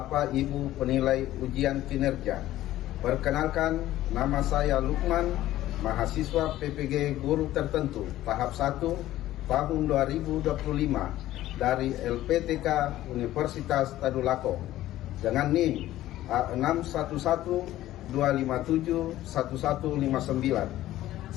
Ibu penilai ujian kinerja, perkenalkan nama saya Lukman, mahasiswa PPG Guru Tertentu tahap 1 tahun 2025 dari LPTK Universitas Tadulako dengan NIM A6112571159.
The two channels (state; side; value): quieter; right; 14.5 dB